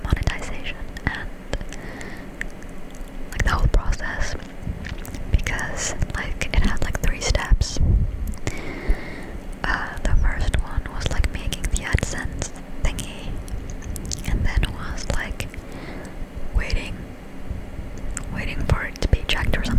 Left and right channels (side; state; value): both; identical; correlation 1.00